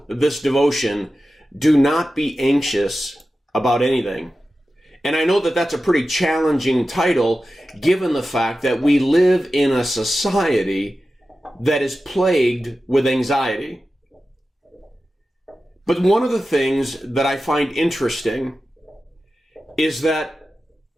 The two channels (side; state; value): both; normal; correlation 0.93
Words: this devotion, Do Not Be Anxious About Anything. And I know that that's a pretty challenging title, given the fact that we live in a society that is plagued with anxiety. But one of the things that I find interesting is that